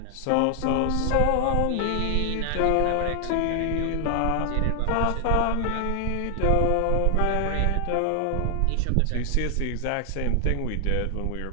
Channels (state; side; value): different; both; correlation 0.00